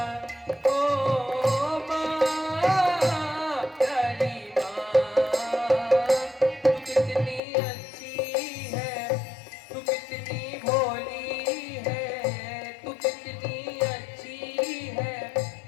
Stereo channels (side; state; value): right; drops out; at 7.4 s